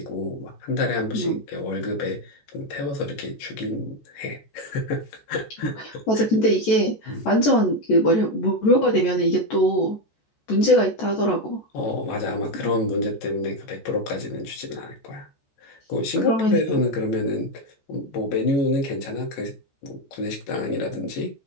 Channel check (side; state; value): right; late; 14 ms